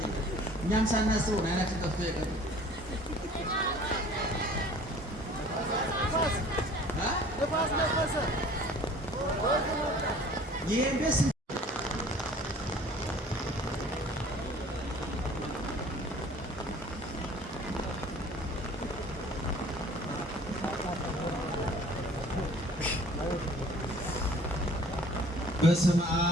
እኛም ሳናስበው አይናችን ጠፍቶ ይቀር ነፋስ ነፈሰ ይሄንስ በስመ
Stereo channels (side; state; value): both; normal; correlation 0.49